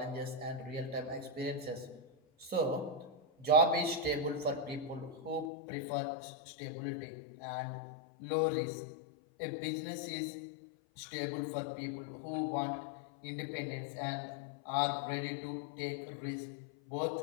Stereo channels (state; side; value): drops out; right; at 5.5 s